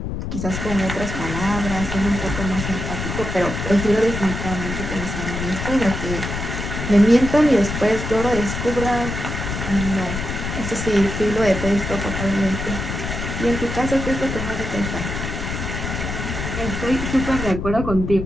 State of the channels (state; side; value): noise; left; rumble, 5 dB below the sound